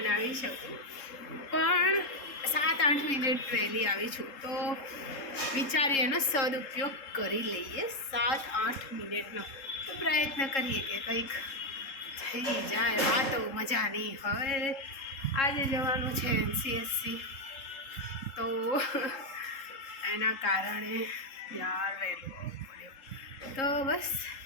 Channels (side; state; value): right; late; 3.7 ms